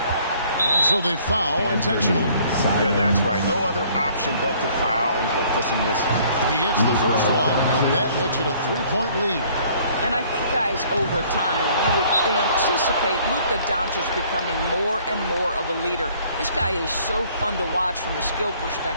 And so they foul intentionally. That's right. No other option but to foul and hope for some misses. He hits the first one, and that makes it a 3-point lead. And I think, guys, over time, you would anticipate Luka Doncic becoming more and more of a leader. This guy is so fun to watch from a skill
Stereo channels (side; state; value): both; inverted; correlation -0.59